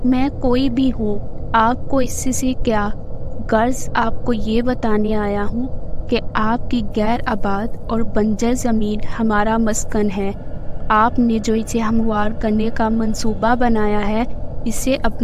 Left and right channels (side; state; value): both; identical; correlation 1.00